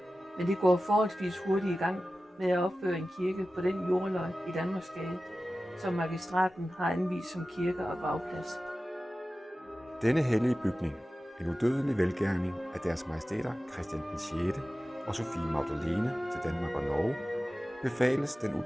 Men det går forholdsvis hurtigt i gang med at opføre en kirke på den jordløg i Danmarksgade, som magistraten har anvist som kirke og gravplads. Denne hellige bygning, en udødelig velgærning af deres majestæter Christian den 6. og Sophie Magdalene til Danmark og Norge, befales den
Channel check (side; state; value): both; normal; correlation 0.95